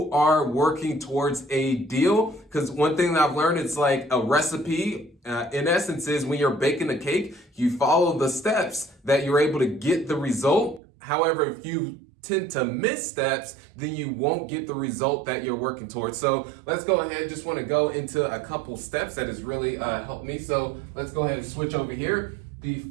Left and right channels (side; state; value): left; drops out; at 10.8 s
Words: are working towards a deal. Because one thing that I've learned, it's like a recipe, in essence, is when you're baking a cake, you follow the steps that you're able to get the result. However, if you tend to miss steps, then you won't get the result that you're working towards. So let's go ahead. Just want to go into a couple steps that has really helped me. So let's go ahead and switch over here. The